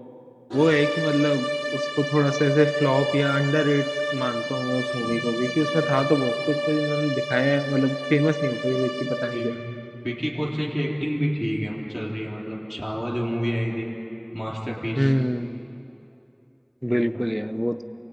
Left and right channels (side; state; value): both; identical; correlation 1.00